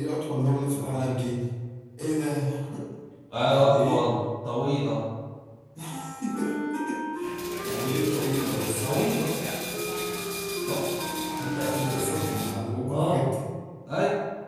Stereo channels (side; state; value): both; identical; correlation 1.00